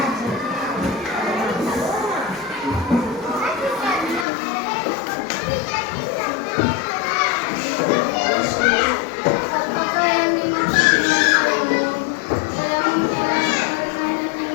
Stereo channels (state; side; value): drops out; right; at 4.2 s